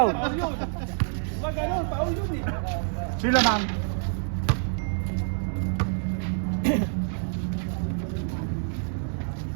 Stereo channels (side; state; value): left; silent; 60 dB below the other